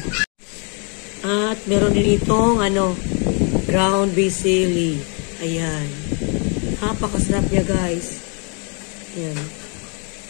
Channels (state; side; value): quieter; right; 36.5 dB